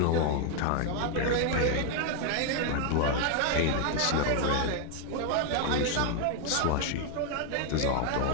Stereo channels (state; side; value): different; both; correlation 0.00